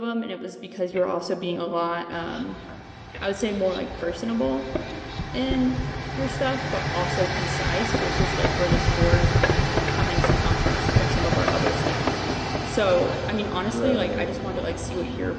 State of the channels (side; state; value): both; identical; correlation 1.00